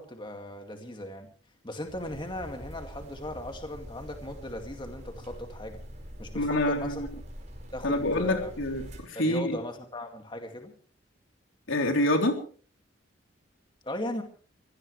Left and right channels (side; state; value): both; normal; correlation 0.18